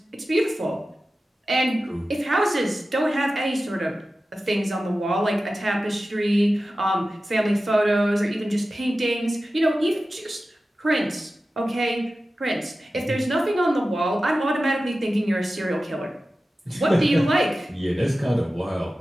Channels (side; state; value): both; normal; correlation 0.94